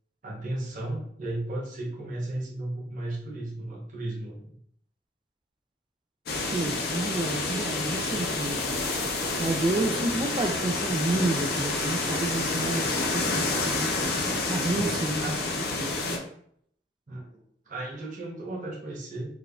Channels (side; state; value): both; normal; correlation 0.47